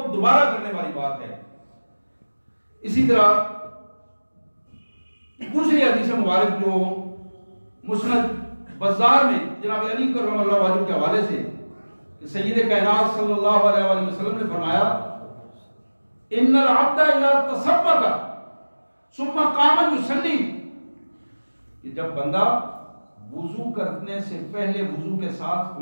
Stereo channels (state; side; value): inverted; both; correlation -1.00